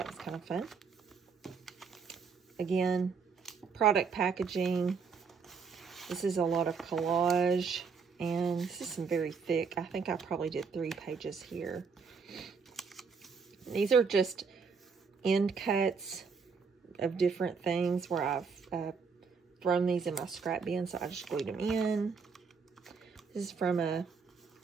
was kind of fun. Again, product packaging. This is a lot of collage. And this is some very thick. I think I probably did 3 pages here. These are just end cuts of different things where I've thrown these in my scrap bin, so I just glued them in. This is from a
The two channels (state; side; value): quieter; left; 5.5 dB